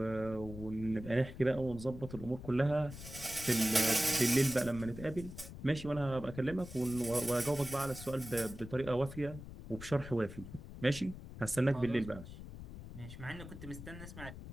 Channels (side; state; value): left; noise; rumble, 12 dB below the sound